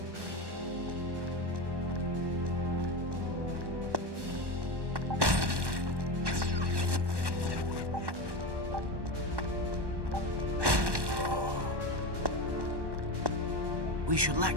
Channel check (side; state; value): left; late; 1.1 ms